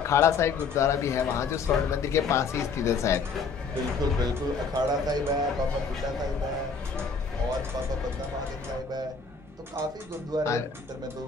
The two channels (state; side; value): quieter; right; 5.0 dB